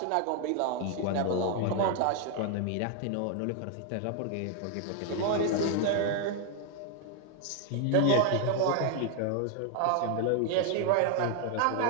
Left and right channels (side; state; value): both; different; correlation 0.00